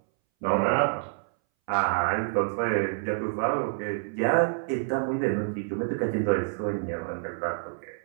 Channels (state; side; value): silent; left; 60 dB below the other